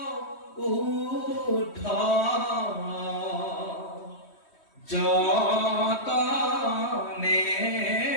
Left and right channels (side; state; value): right; late; 3.1 ms